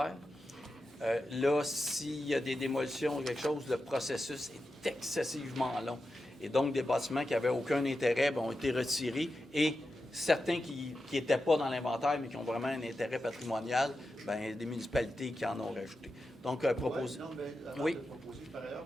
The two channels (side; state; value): both; normal; correlation 0.90